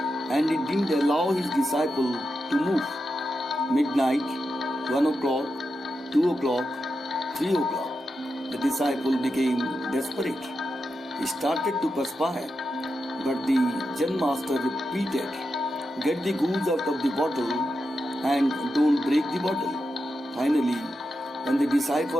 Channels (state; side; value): normal; both; correlation 0.88